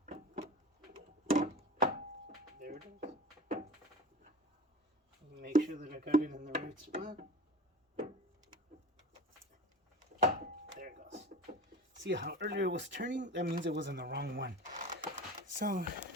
There it is. Make sure that I got it in the right spot. There it goes. See how earlier it was turning? That means it was in the wrong one. So,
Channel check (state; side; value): normal; both; correlation 0.36